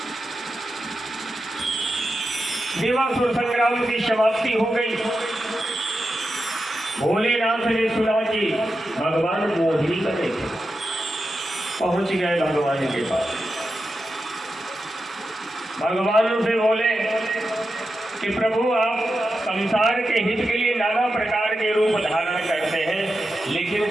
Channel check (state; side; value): normal; both; correlation 0.90